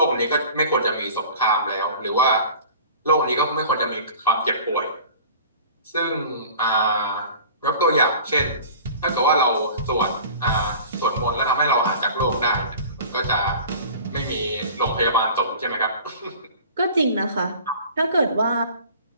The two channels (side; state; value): both; inverted; correlation -0.42